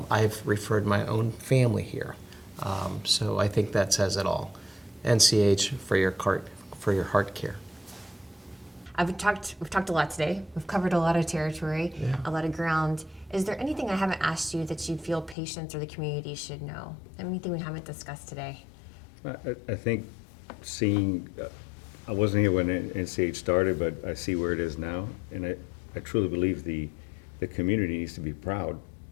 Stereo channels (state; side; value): drops out; right; at 15.4 s